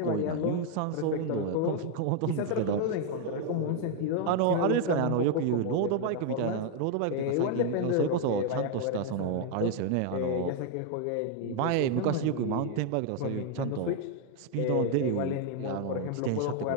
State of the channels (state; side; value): different; both; correlation 0.00